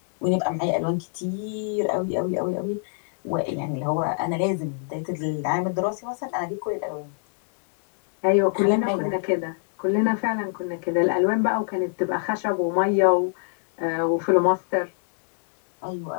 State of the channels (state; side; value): silent; right; 61 dB below the other